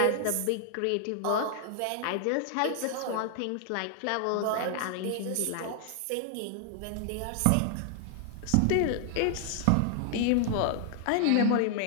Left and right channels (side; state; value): both; different; correlation 0.00